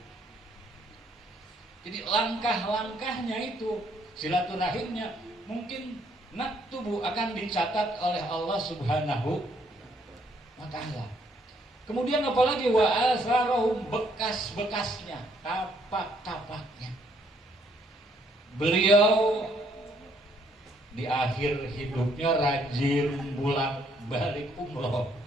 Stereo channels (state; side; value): normal; both; correlation 0.68